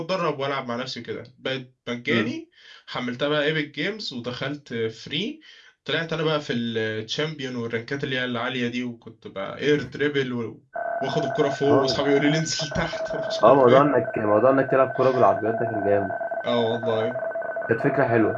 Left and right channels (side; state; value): both; identical; correlation 1.00